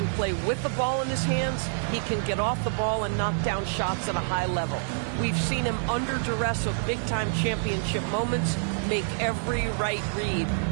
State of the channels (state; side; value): silent; left; 60 dB below the other